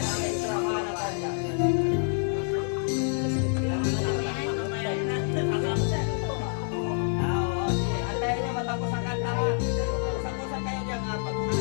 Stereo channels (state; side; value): silent; right; 57 dB below the other